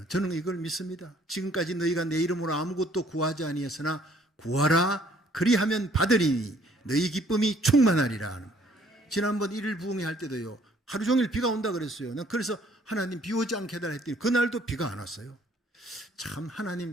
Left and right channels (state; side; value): normal; both; correlation 0.61